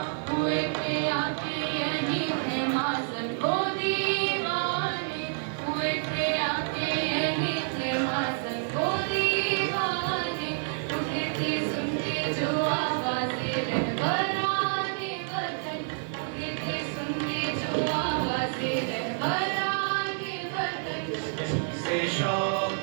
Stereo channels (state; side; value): silent; left; digital silence